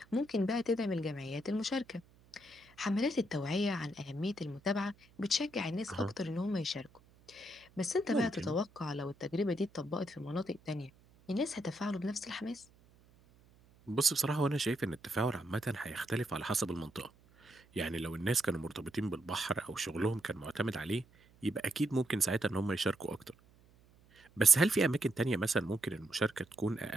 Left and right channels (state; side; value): noise; right; hum, 28 dB below the sound